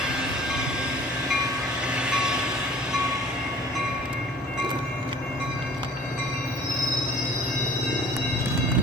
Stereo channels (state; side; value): normal; both; correlation 0.49